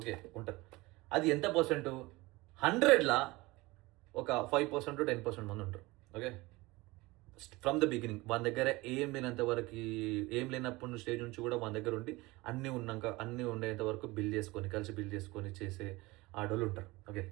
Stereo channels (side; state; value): left; quieter; 21.6 dB